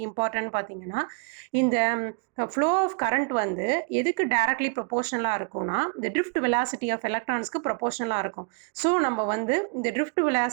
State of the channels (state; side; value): quieter; left; 36.0 dB